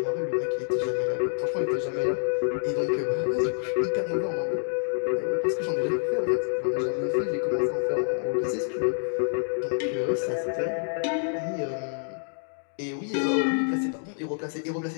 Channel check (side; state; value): right; silent; digital silence